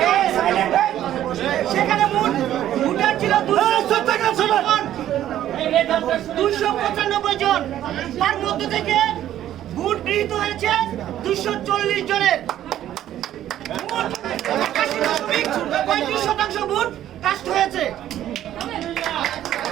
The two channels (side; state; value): left; quieter; 12.1 dB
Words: হবে। সেখানে ভোটার ছিল 295 জন, তার মধ্যে থেকে ভোট গৃহীত হয়েছে 240 জনের। 35% ভোট কাস্ট হয়েছে।